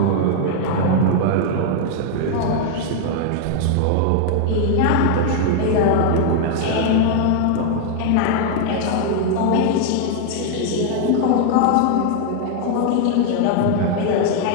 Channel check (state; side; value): different; both; correlation 0.00